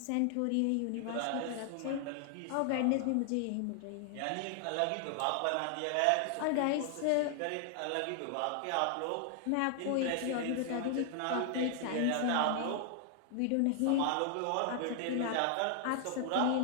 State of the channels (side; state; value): both; different; correlation 0.00